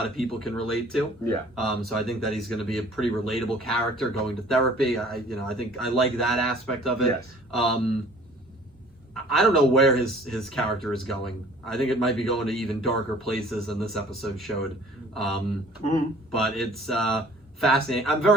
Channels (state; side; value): normal; both; correlation 0.52